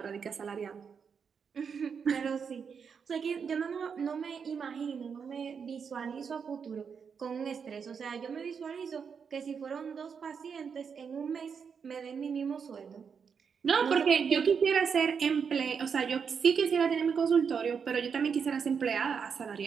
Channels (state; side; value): quieter; left; 6.4 dB